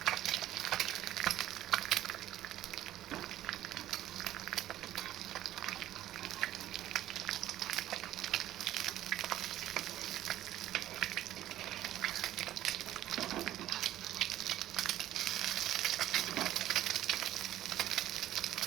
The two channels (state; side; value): quieter; left; 13.3 dB